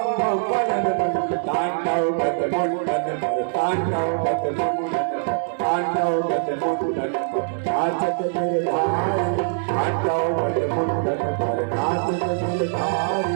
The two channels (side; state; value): left; silent; 64 dB below the other